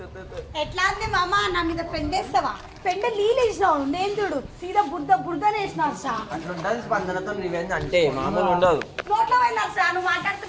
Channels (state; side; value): identical; both; correlation 1.00